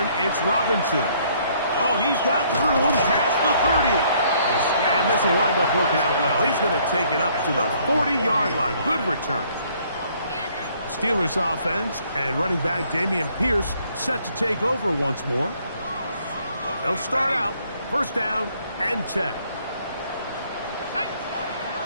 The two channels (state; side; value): inverted; both; correlation -0.64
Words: it's Robinson. Oh, he's got room past the 30. And this will wind up working out well. He's going to take it up to the 40-yard line. Good return. Steelers offense and running back Dameon Pierce set to take over once more. They'll start out first down and 10. 19,